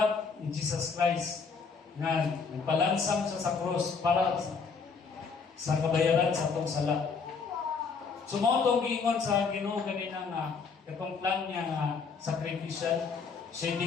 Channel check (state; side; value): quieter; right; 5.2 dB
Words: ni Jesus Christ nga nagpalansang siya sa cross para sa kabayaran sa atong sala. Sumotong giingon sa Ginoo ganina nga katong plan niya nga sacrificial